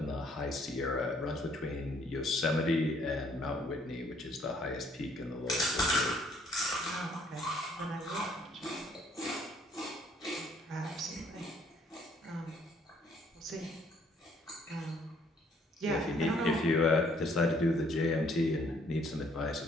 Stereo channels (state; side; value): normal; both; correlation 0.64